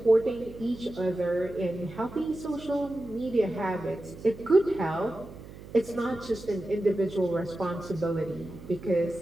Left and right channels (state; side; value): noise; right; hum, 16 dB below the sound